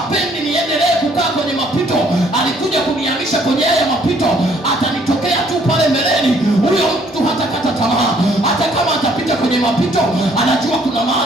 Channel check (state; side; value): normal; both; correlation 0.63